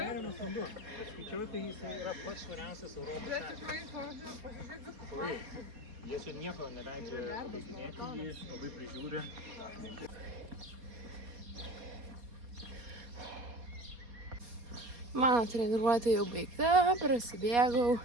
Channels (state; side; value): late; left; 4.2 ms